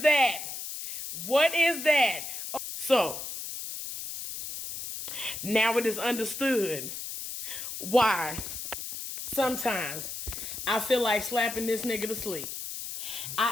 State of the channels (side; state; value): left; noise; hiss, 7 dB below the sound